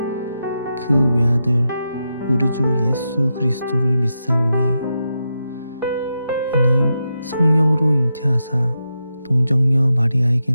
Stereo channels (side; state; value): both; inverted; correlation -0.87